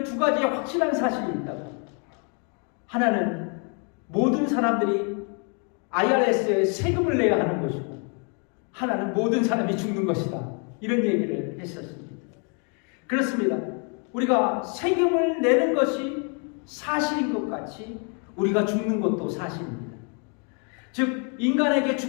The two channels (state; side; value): quieter; right; 37.7 dB